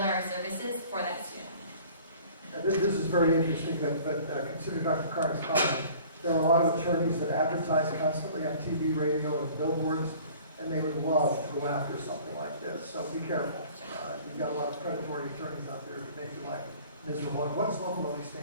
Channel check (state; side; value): inverted; both; correlation -0.49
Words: our services for that student. This is very interesting, but consider Dr. Carr's comment. There are a lot of attorneys that advertise constantly on TV, radio, and billboards, and they would love to go after something like this. So be careful. You've got a lot of predatory attorneys out there to make your life miserable. And what does Love Loney